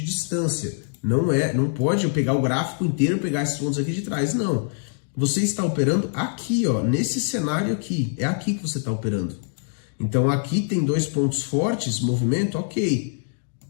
distância. Não pode eu pegar o gráfico inteiro e pegar esses pontos aqui de trás, não. Você está operando aqui, ó, nesse cenário aqui. É aqui que você está operando. Então aqui tem dois pontos fortes, movimento, ok.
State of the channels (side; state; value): right; silent; digital silence